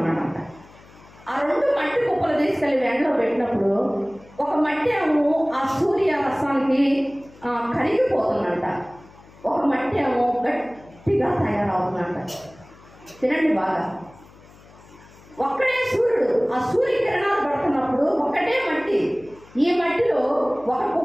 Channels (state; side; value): noise; left; hum, 24 dB below the sound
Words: ఆ 2 మట్టి కుప్పలు తీసుకెళ్ళి ఎండలో పెట్టినప్పుడు ఒక మట్టి ఏమో ఆ సూర్య రసానికి కరిగిపోతుందంట, ఒక మట్టి ఏమో గట్టిగా తయారవుతుందంట. తినండి బాగా. ఒక్కడే సూర్యుడు, ఆ సూర్యకిరణాలు పడుతున్నప్పుడు ఒకటే మట్టి, ఈ మట్టిలో ఒక